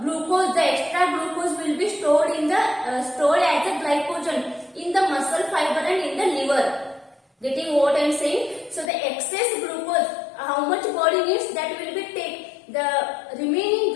glucose, the extra glucose will be stored in the stored as a glycogen in the muscle fiber and in the liver. Getting what I am saying? So the excess glucose, how much body needs, that will be taken. The remaining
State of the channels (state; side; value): drops out; right; at 8.9 s